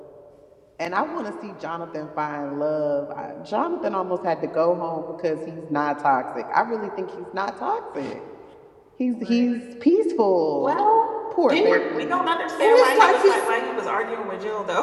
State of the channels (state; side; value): identical; both; correlation 1.00